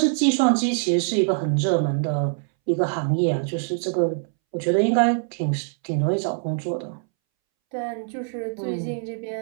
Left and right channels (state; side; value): silent; left; 63 dB below the other